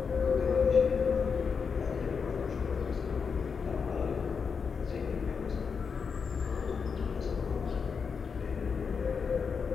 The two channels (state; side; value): quieter; right; 5.8 dB